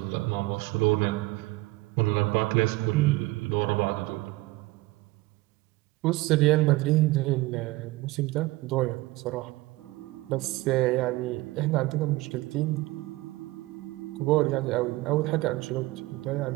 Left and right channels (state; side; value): quieter; left; 20.1 dB